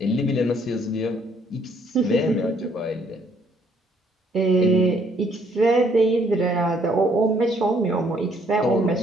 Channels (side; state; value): both; normal; correlation 0.66